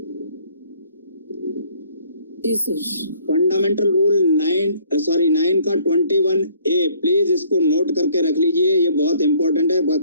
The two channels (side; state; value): both; inverted; correlation -0.60